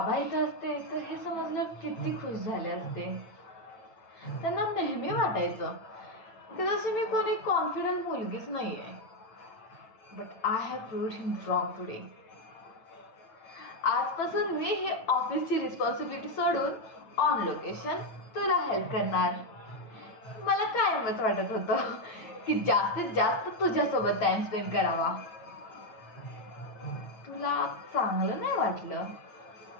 इथं असते तर हे समजलं किती खुश झाले असते. त्यांना नेहमी वाटायचं की जशी मी कोणी कॉन्फिडंट मुलगीच नाही आहे. But I have proved him wrong today. आजपासून मी ही ऑफिसची रिस्पॉन्सिबिलिटी सोडून ऑन लोकेशन तुला हेल्प करणार. मला कायमच वाटत होतं की जास्तीत जास्त तुझ्यासोबत टाइम स्पेंड करावा. तुला चांगलं नाही वाटलं?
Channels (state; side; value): late; right; 9.1 ms